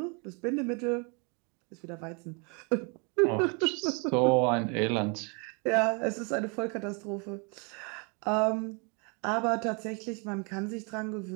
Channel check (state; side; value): quieter; left; 34.1 dB